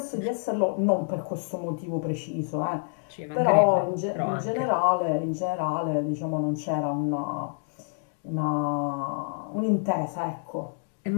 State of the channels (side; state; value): right; silent; digital silence